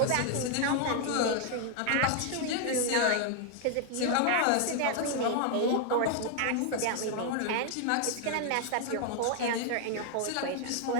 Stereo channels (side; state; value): both; different; correlation 0.00